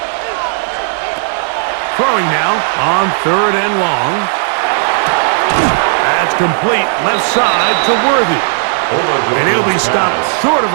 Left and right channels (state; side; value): silent; left; digital silence